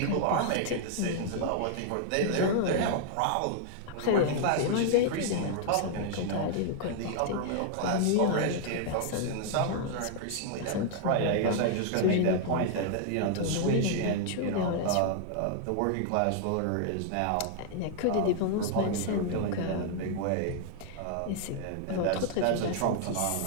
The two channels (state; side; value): different; both; correlation -0.01